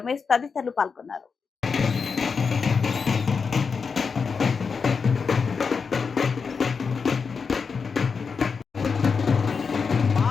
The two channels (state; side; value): quieter; right; 5.4 dB